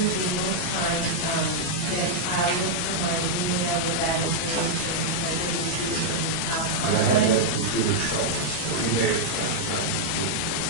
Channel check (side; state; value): right; late; 14 ms